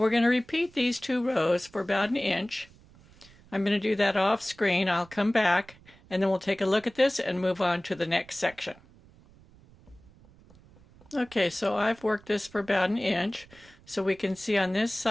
going to repeat these two rows for about an inch. I'm going to do that off screen. I'll come back and then we'll take a look at this and move on to the next section. Okay, so I've worked this for about an inch. So we can see on this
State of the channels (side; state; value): right; noise; rumble, 26 dB below the sound